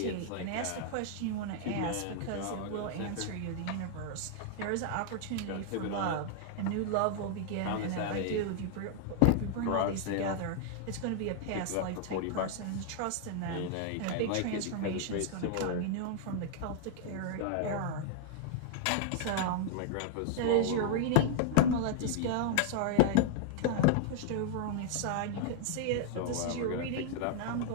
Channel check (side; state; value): both; different; correlation 0.00